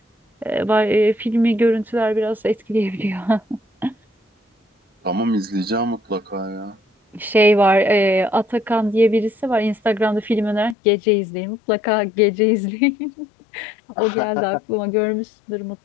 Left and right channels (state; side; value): drops out; right; at 10.8 s